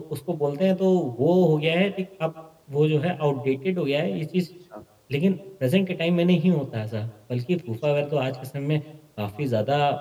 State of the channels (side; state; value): both; identical; correlation 1.00